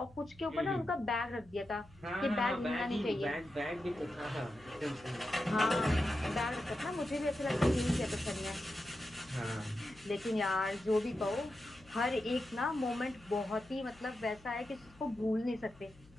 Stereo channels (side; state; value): left; noise; hum, 25 dB below the sound